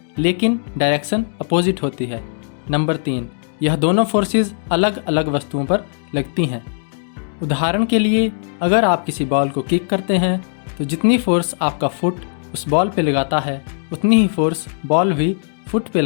लेकिन डायरेक्शन अपोजिट होती है। नंबर 3, यह दोनों फोर्सेस अलग अलग वस्तुओं पर लगती हैं। उदाहरण के लिए, अगर आप किसी बॉल को किक करते हैं तो जितनी फोर्स आपका फुट उस बॉल पे लगाता है उतनी ही फोर्स बॉल भी फुट पे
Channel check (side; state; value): right; silent; digital silence